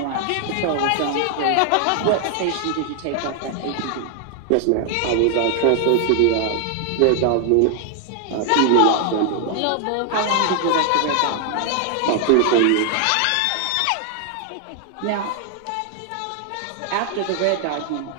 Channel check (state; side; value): different; both; correlation 0.00